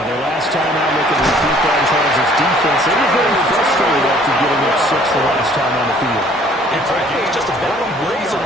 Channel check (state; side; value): normal; both; correlation 0.57